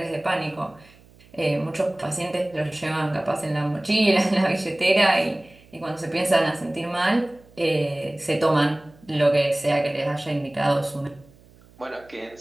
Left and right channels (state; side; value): noise; right; hum, 27 dB below the sound